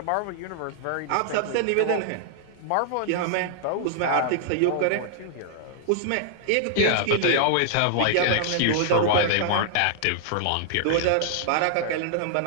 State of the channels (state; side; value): different; both; correlation -0.01